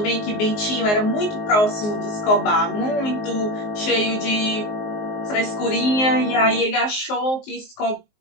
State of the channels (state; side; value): late; right; 19 ms